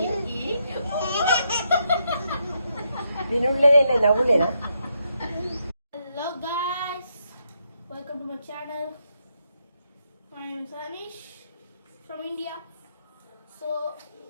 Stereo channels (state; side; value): inverted; both; correlation -0.79